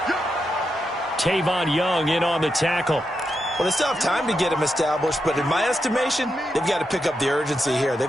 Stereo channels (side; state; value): both; normal; correlation 0.85